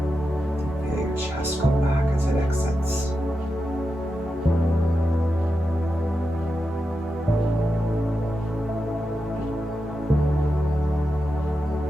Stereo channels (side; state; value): both; normal; correlation 0.89